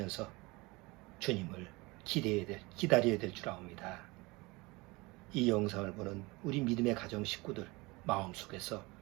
주님을 기다려야 될 줄 압니다. 이 영상을 보는 우리 믿음의 가정 식구들 마음속에서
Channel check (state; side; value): quieter; left; 23.8 dB